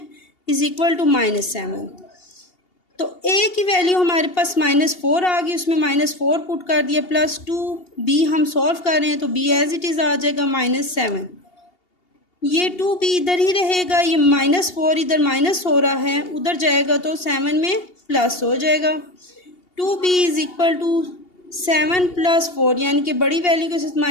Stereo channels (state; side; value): late; right; 2.8 ms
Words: इज़ इक्वल टू -7। तो a की वैल्यू हमारे पास -4 आ गई, उसमें -4 पुट कर दिया, प्लस 2b हम सॉल्व कर रहे हैं तो b एज इट इज़ आ जाएगा -7। ये 2b इधर ही रहेगा, ये -4 इधर माइनस हो रहा है, उधर जाएगा तो 7 में प्लस हो जाएगा। 2b is equal to 7 plus 4, यानी कि बड़ी वैल्यू के साथ